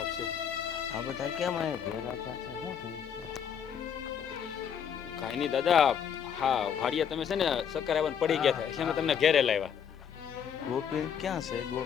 છે. આ બધા કેમ આયા ભેગા થયા છે? શું થયું છે? કાંઈ નહીં દાદા, હા વાડિયા તમે છે ને ચક્કર આવવાનું પડી ગયા હતા એટલે અમે તમને ઘેરે લાવ્યા. ગોપી ક્યાં છે?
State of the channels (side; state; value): right; quieter; 8.0 dB